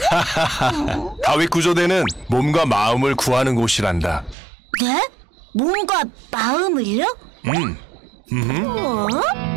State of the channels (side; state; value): left; drops out; at 4.4 s